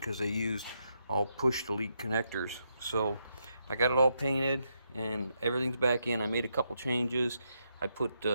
they used all push to leak connectors. So I got it all painted and everything's back in. I made a couple changes. I put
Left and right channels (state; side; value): inverted; both; correlation -0.80